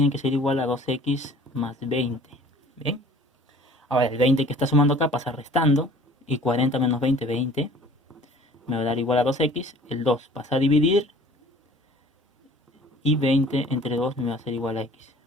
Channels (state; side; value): normal; both; correlation 0.50